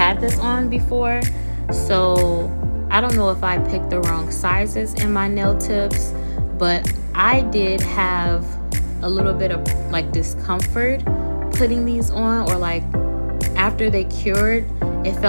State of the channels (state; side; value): inverted; both; correlation -1.00